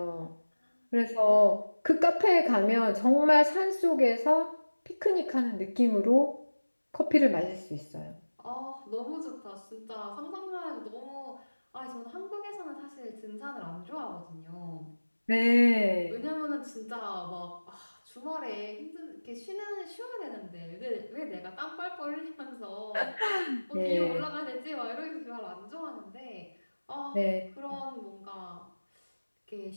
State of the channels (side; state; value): both; inverted; correlation -1.00